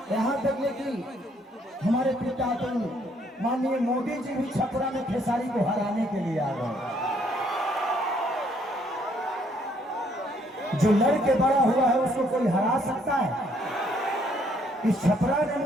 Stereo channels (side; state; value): both; normal; correlation 0.67